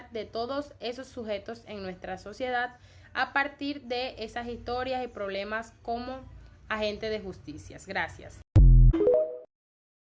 de todos esos sujetos en nuestra sociedad a partir de esas historias y problemas como agente de justicia. Gracias.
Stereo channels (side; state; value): both; identical; correlation 1.00